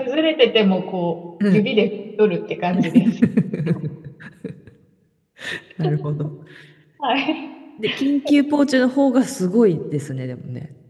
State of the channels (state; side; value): identical; both; correlation 1.00